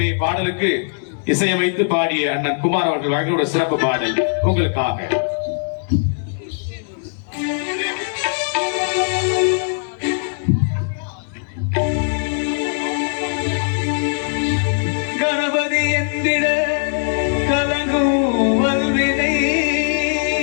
பாடலுக்கு இசையமைத்து பாடிய அண்ணன் குமார் அவர்கள் வழங்கிய சிறப்பு பாடல் உங்களுக்காக. கணபதி என்கிற கலங்கும் வல்வினை,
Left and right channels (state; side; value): silent; right; digital silence